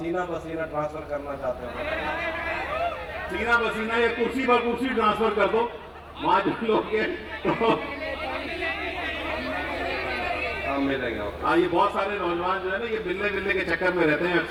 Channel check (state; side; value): identical; both; correlation 1.00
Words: بسینہ ٹرانسفر کرنا چاہتے ہو سینہ بسینہ یا کرسی پر کرسی ٹرانسفر کر دو، وہاں جو لوگ ہم ملیں گے۔ ہاں، یہ بہت سارے نوجوان جو ہے نا، یہ ملنے کے چکر میں رہتے ہیں